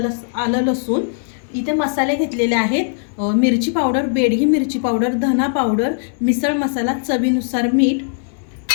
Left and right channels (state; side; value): silent; right; digital silence